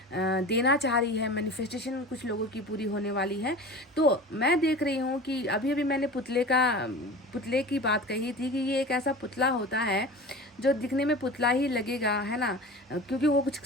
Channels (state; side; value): normal; both; correlation 0.35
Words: देना चाह रही है, मैनिफेस्टेशन कुछ लोगों की पूरी होने वाली है। तो मैं देख रही हूँ कि अभी मैंने पुतले की बात कही थी कि ये एक ऐसा पुतला होता है जो दिखने में पुतला ही लगेगा, है ना, क्योंकि वो कुछ